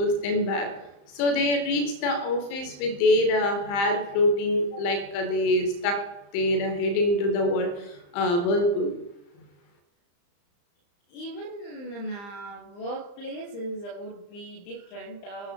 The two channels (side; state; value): right; late; 35 ms